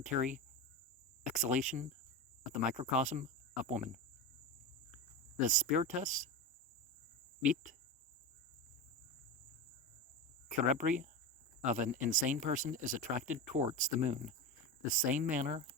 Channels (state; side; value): normal; both; correlation 0.21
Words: exhalation of the microcosm of woman. The spiritus vit cerebri of an insane person is attracted towards the moon, the same manner